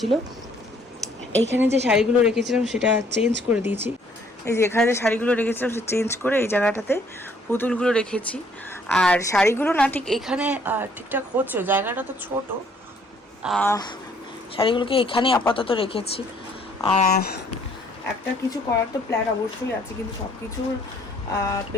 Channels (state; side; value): normal; both; correlation 0.63